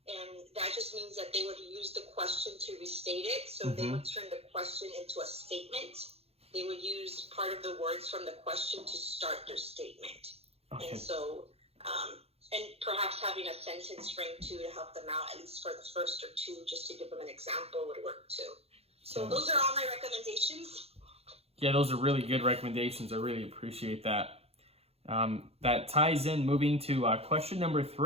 And that just means that they would use the question to restate it. So they would turn the question into a statement. They would use part of the words from the question to start their statement. Okay. And so, and perhaps having a sentence frame too to help them out, at least for the first or two, just to give them an example would work too. So those are all my recommendations. Yeah, those are really good recommendations. I really appreciate that. That ties in, moving to question number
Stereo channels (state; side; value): late; left; 0.29 ms